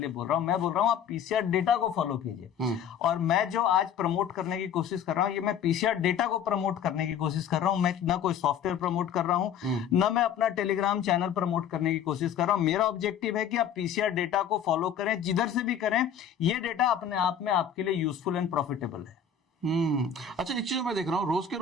बोल रहा हूं, मैं बोल रहा हूं आप पीसीआर डेटा को फॉलो कीजिए। और मैं जो आज प्रमोट करने की कोशिश कर रहा हूं, ये मैं पीसीआर डेटा को प्रमोट करने की कोशिश कर रहा हूं। मैं ना कोई सॉफ्टवेयर प्रमोट कर रहा हूं, ना मैं अपना टेलीग्राम चैनल प्रमोट करने की कोशिश कर रहा हूं। मेरा ऑब्जेक्टिव है कि आप पीसीआर डेटा को फॉलो करें, जिधर से भी करें। ये डेटा अपने आप में आपके लिए यूजफुल एंड प्रॉफिटेबल है। अच्छा, एक चीज मैं देख रहा हूँ, रोज के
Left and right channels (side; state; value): right; quieter; 7.9 dB